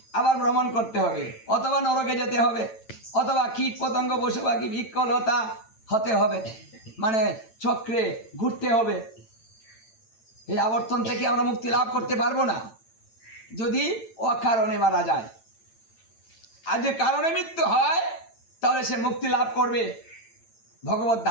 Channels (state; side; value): late; right; 8.9 ms